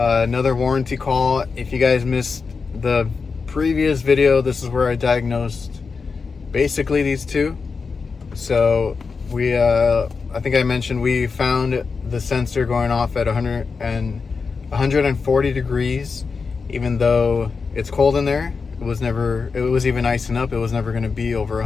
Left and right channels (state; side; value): quieter; right; 4.9 dB